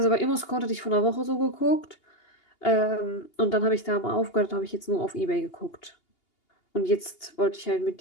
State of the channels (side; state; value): right; late; 2.8 ms